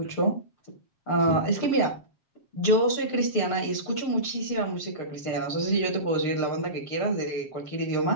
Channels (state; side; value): late; right; 7.3 ms